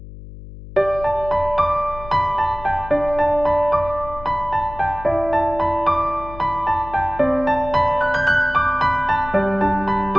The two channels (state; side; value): noise; left; hum, 15 dB below the sound